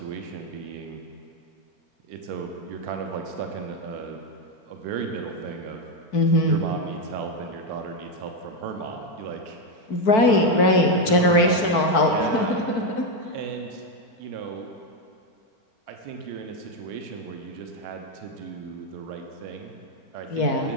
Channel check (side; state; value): right; late; 4.6 ms